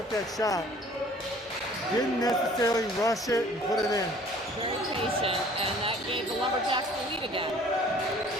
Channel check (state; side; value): normal; both; correlation 0.52